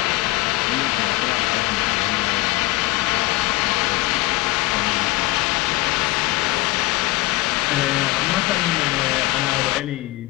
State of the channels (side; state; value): right; quieter; 18.9 dB